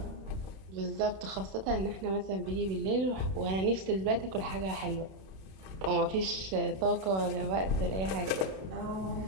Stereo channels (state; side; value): late; left; 32 ms